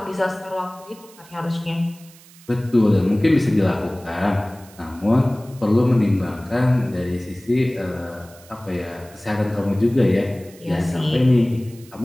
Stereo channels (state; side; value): noise; right; hiss, 24 dB below the sound